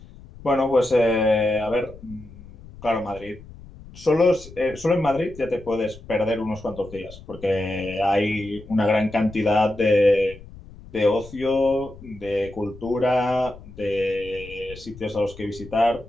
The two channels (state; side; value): noise; left; rumble, 18 dB below the sound